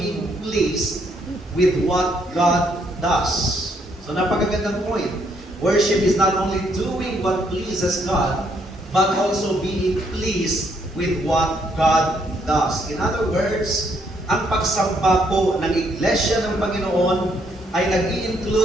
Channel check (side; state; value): both; normal; correlation 0.71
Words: pleased with what God does. So napakagandang point. Worship is not only doing what pleases God, but also being pleased with what God does. In other words, ang pagsamba po ng Iglesia ng Panginoon ay